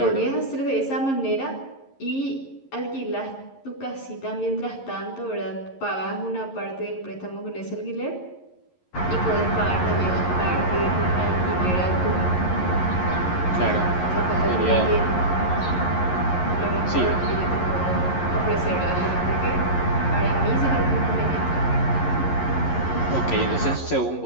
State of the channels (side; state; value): right; late; 11 ms